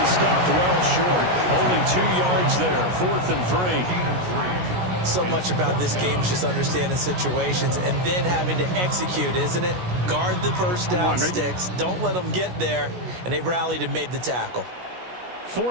stopped well short. Only 2 yards there. 4th and 3. So much about this game is just understanding situations and then having to execute, isn't it? Guard the first down sticks. Don't let them get there. And they rallied and made the tackle.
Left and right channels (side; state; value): left; late; 16 ms